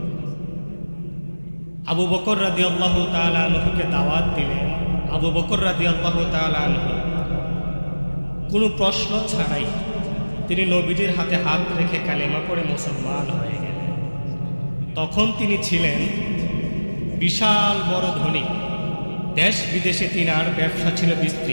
আবু বকর রাদিয়াল্লাহু তাআলা আনহুকে দাওয়াত দিলেন, আবু বকর রাদিয়াল্লাহু তাআলা আনহু কোনো প্রশ্ন ছাড়াই তিনি নবীজির হাতে হাত রেখে কালেমা পড়ে মুসলমান হয়ে গেলেন। তখন তিনি ছিলেন বিশাল বড় ধনী, দেশ বিদেশে তিনার ব্যবসা ছিল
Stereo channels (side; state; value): both; inverted; correlation -1.00